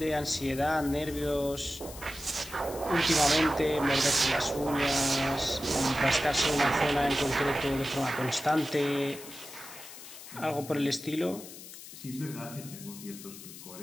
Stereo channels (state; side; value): noise; left; hiss, 14 dB below the sound